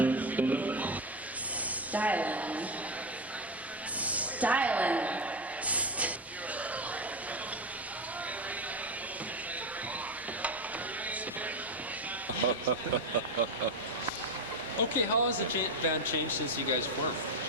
Styling. Styling. Okay, how has the band changed since you guys formed?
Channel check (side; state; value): both; normal; correlation 0.14